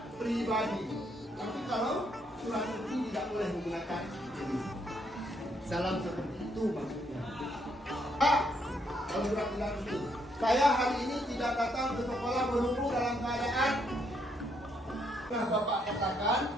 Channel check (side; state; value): both; normal; correlation 0.73